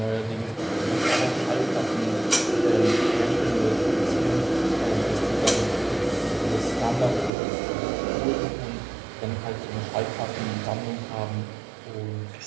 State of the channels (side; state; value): left; drops out; at 7.3 s